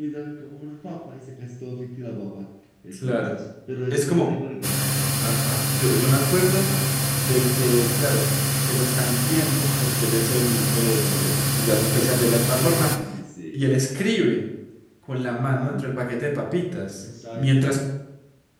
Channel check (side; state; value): both; identical; correlation 1.00